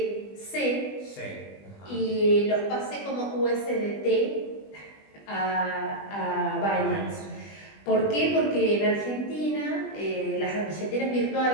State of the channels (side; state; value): right; late; 20 ms